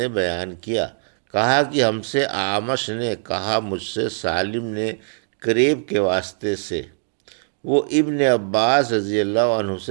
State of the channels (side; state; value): left; silent; 64 dB below the other